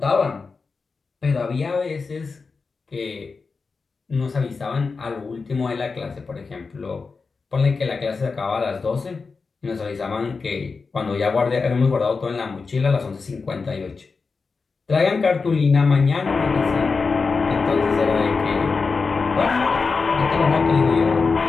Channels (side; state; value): right; quieter; 4.6 dB